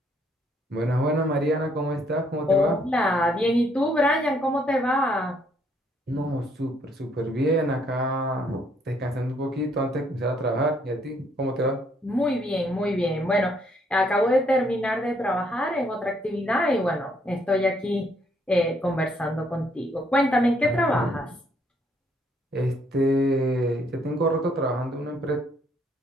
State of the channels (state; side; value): normal; both; correlation 0.69